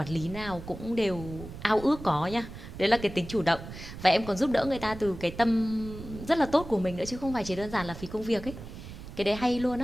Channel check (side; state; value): right; noise; rumble, 12 dB below the sound